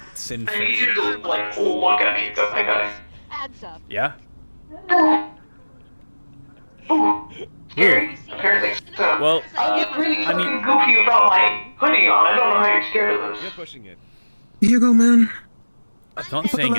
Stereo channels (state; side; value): inverted; both; correlation -1.00